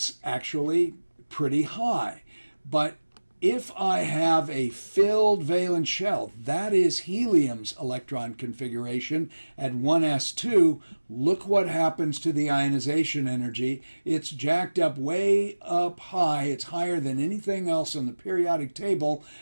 actually pretty high. But if I have a filled valence shell, that is helium's electron configuration at 1s2, look what happens to the ionization energy. It's jacked up way up high. It's higher than anything else on the periodic table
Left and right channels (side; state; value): both; inverted; correlation -1.00